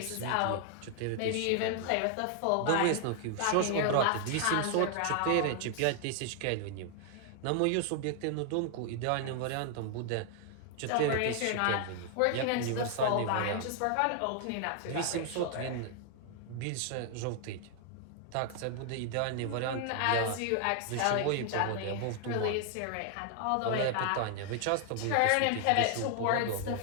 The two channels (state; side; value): different; both; correlation 0.00